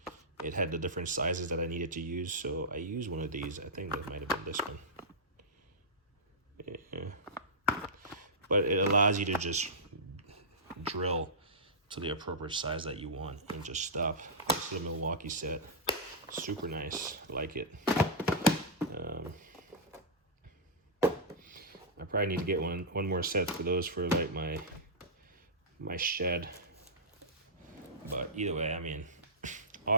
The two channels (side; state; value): both; normal; correlation -0.12